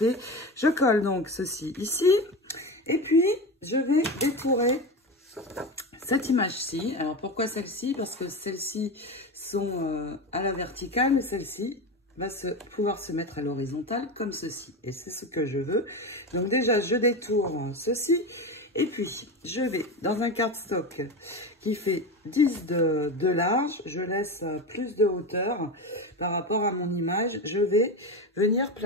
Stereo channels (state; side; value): normal; both; correlation 0.22